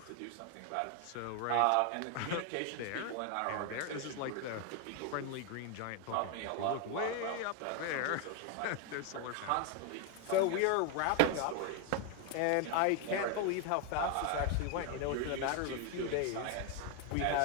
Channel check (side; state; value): both; different; correlation 0.01